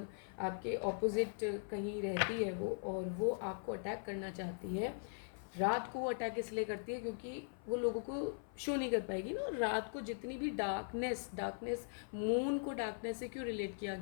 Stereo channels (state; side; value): silent; right; 51 dB below the other